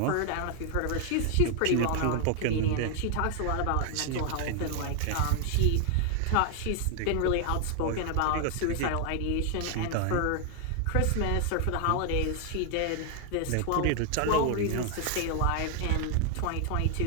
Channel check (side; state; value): both; different; correlation 0.00